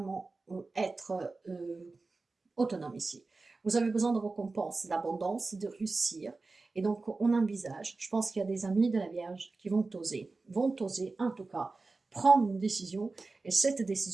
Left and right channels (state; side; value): quieter; left; 3.7 dB